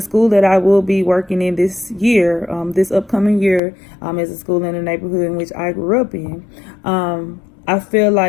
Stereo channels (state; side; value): drops out; right; at 3.6 s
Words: that I will be working in this year, this upcoming year, is a school in the neighborhood in which I grew up in. I feel